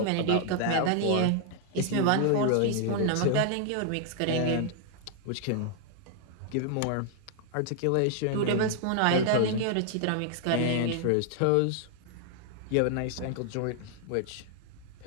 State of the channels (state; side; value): different; both; correlation 0.00